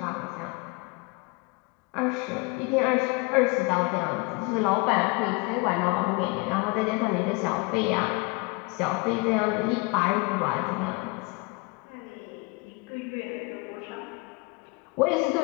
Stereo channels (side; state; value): right; quieter; 27.9 dB